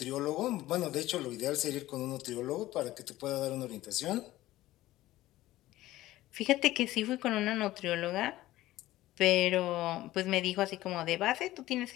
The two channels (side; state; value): right; quieter; 16.1 dB